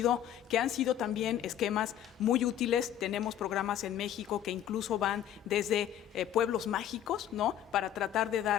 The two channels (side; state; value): right; quieter; 10.8 dB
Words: que han sido también esquemas muy útiles. Tenemos programas en México que incluso van desde pueblos mágicos, ¿no? Para tratar de